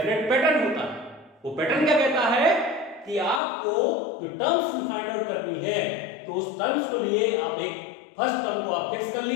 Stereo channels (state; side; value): drops out; right; at 3.4 s